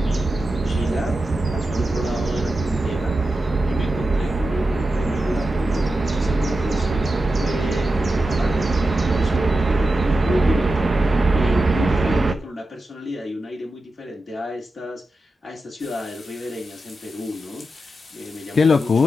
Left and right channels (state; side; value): normal; both; correlation 0.91